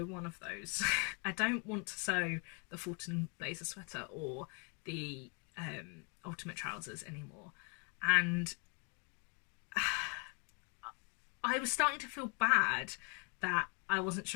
one of those. I don't want to sew the Fulton blazer sweater or the ultimate trousers anymore. And I was starting to feel bad that I wasn't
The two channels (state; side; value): quieter; right; 35.2 dB